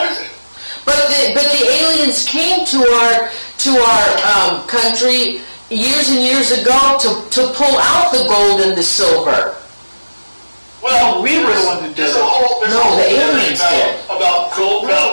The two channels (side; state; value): both; inverted; correlation -1.00